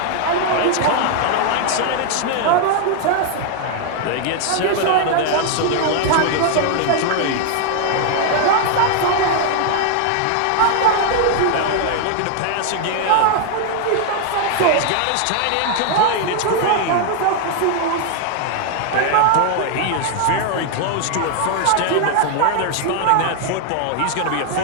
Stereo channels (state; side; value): different; both; correlation 0.00